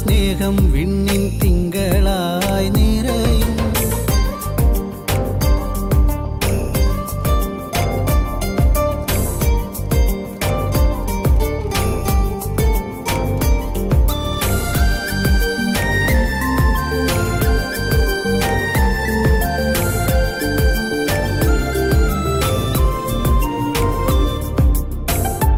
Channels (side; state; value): both; identical; correlation 1.00